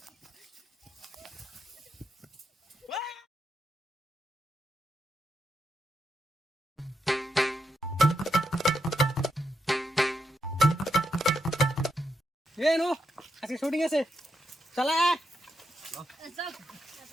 এ নো আজকে শুটিং আছে চলা চল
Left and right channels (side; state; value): both; normal; correlation 0.83